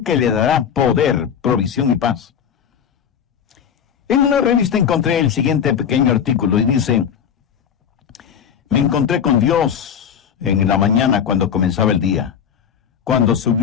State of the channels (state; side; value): quieter; right; 8.0 dB